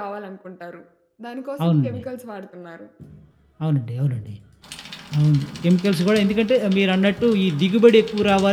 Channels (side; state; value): both; identical; correlation 1.00